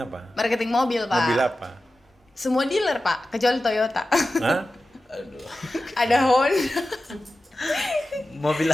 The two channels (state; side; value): normal; both; correlation 0.94